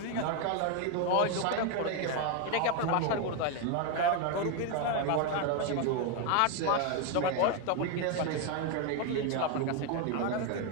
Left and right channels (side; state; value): both; different; correlation 0.02